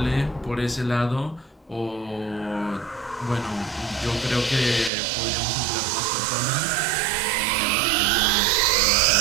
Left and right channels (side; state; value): left; drops out; at 4.9 s